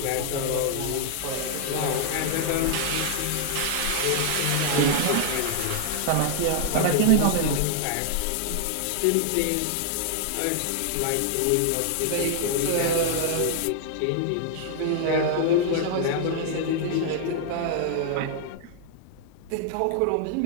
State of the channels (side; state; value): both; different; correlation 0.00